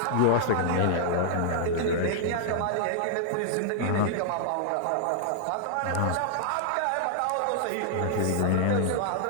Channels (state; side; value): different; both; correlation -0.01